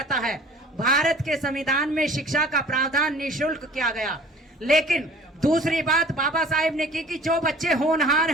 है। भारत के संविधान में शिक्षा का प्रावधान निःशुल्क किया गया। लेकिन दूसरी बात बाबा साहेब ने की कि जो बच्चे होनहार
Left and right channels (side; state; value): both; normal; correlation 0.48